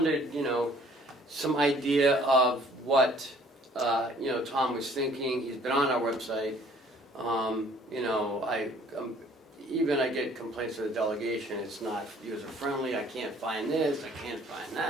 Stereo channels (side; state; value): both; normal; correlation 0.57